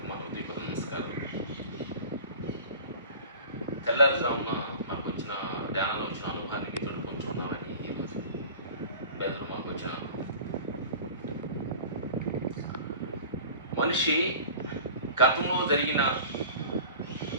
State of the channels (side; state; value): both; inverted; correlation -0.40